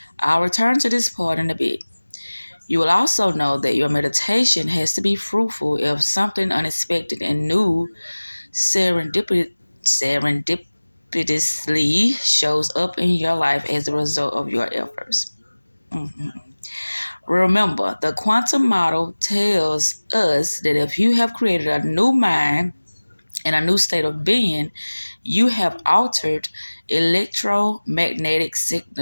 I'll return to this part in a bit. You will also know that your meditation has to be fruitful if something unexpected and new serendipitously shows up in your life as a result of your efforts. Mhm. Remember, the quantum model tells us that if you have created a new mind and a new state of being, you have altered electromagnetic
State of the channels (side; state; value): both; inverted; correlation -1.00